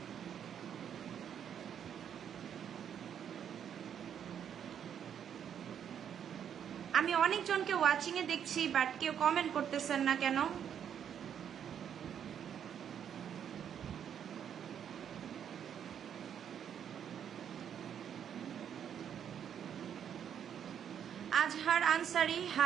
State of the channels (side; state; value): left; quieter; 8.7 dB